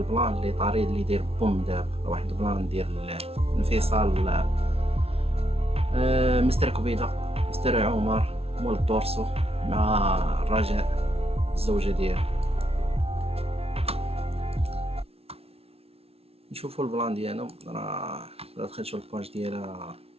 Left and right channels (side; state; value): left; late; 0.29 ms